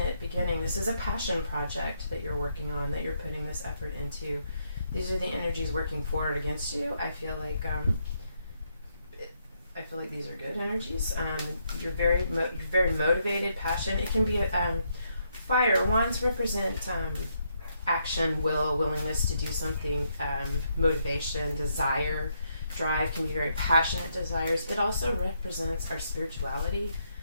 beginning. This is a passion project that you're working on, that you're putting this effort into. These are the energies working forward against you. I feel like these are good energies. You're very motivated, passion. It can be fire. Wands represent action, willingness to do something, motivation, desire, drive. Can be very passionate desires. It also represents our spirituality.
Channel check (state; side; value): inverted; both; correlation -0.77